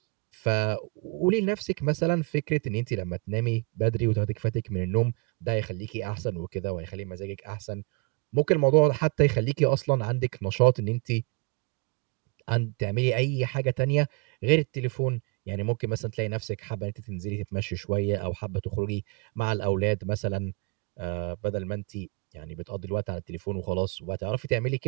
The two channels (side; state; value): left; quieter; 31.9 dB